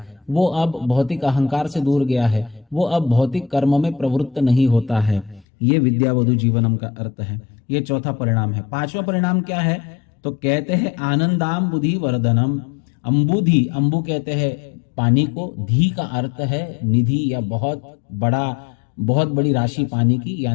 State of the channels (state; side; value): drops out; right; at 5.5 s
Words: वो अब भौतिक अहंकार से दूर गया है, वो अब भौतिक कर्म में प्रवृत्त नहीं होता है। ये विद्यावधु जीवनम का अर्थ है। ये चौथा परिणाम है। पांचवा परिणाम क्या है? तो कहते हैं आनंदाम बुद्धि वर्धनम। अंबुधि, अंबु कहते हैं पानी को, धी का अर्थ है निधि या बहुत बड़ी राशि पानी की,